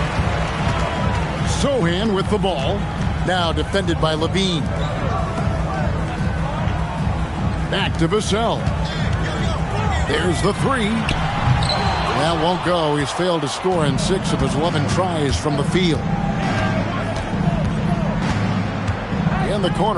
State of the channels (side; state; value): both; identical; correlation 1.00